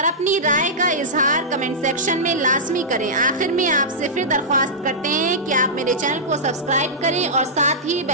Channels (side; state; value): both; normal; correlation -0.14